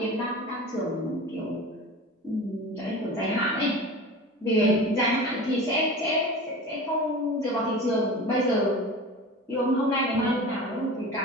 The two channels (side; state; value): both; normal; correlation 0.34